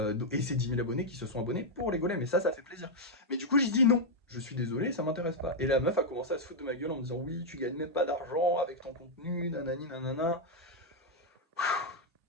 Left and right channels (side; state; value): both; normal; correlation -0.02